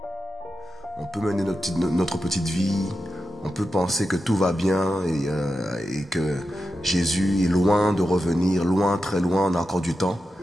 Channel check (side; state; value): both; normal; correlation 0.90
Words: peut mener notre petite vie, on peut penser que tout va bien et que Jésus est loin de revenir, loin, très loin, on a encore du temps.